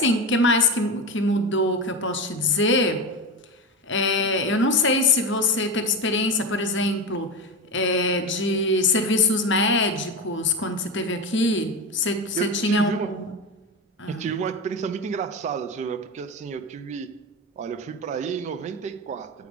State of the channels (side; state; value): both; normal; correlation 0.20